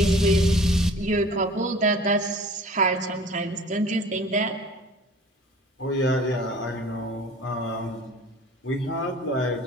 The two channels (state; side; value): normal; both; correlation 0.46